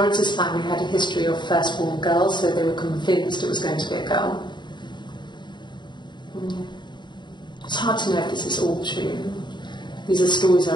family had a history of firstborn girls, so they were convinced it was going to be a girl. It's hard to know if this is all true. These are stories I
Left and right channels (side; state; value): right; late; 0.22 ms